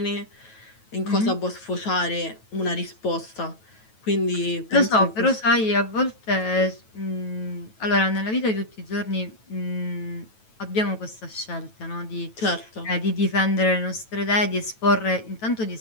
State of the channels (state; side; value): late; right; 9.2 ms